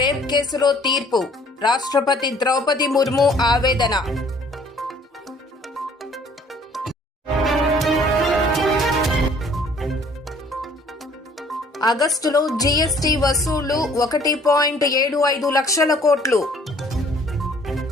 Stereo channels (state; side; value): normal; both; correlation 0.57